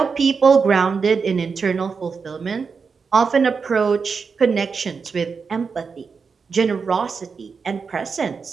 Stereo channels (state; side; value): quieter; left; 5.3 dB